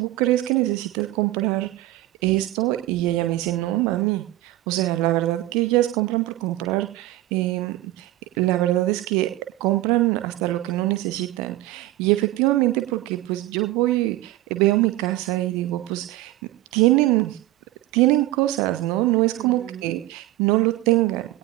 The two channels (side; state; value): left; quieter; 16.6 dB